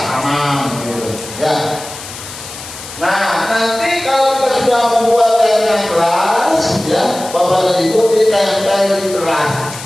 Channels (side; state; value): left; noise; hiss, 13 dB below the sound